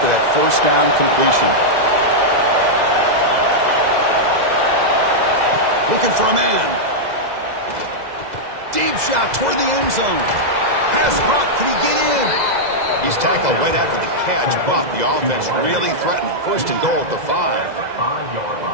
that 1st down completion. Looking for a man. Deep shot toward the end zone. Pass caught. Can he get in? He's tackled right after the catch, but the offense really threatened. 1st and goal at the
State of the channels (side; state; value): left; late; 2.0 ms